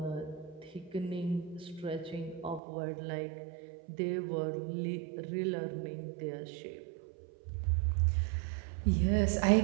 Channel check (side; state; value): left; drops out; at 2.6 s